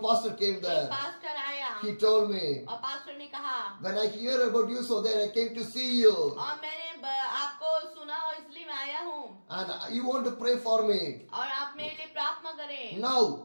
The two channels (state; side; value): inverted; both; correlation -1.00